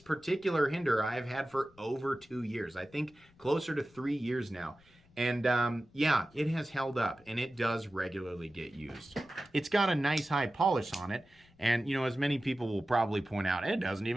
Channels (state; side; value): noise; left; rumble, 28 dB below the sound